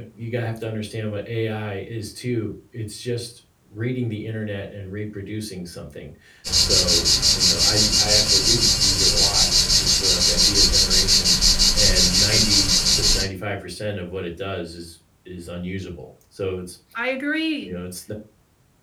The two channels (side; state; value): both; identical; correlation 1.00